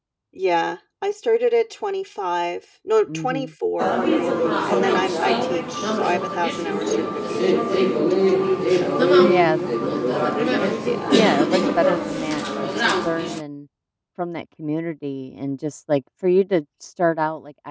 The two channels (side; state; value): both; identical; correlation 1.00